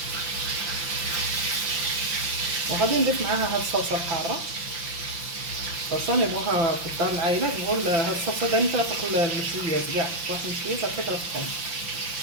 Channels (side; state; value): left; late; 5.9 ms